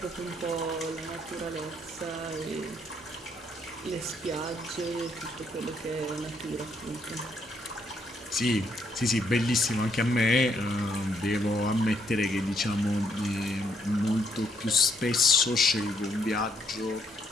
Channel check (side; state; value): both; normal; correlation 0.72